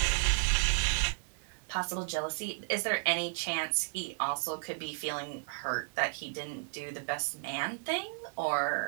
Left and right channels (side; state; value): left; silent; digital silence